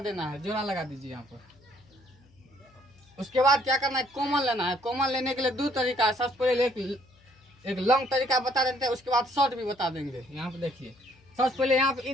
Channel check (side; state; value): left; noise; hum, 30 dB below the sound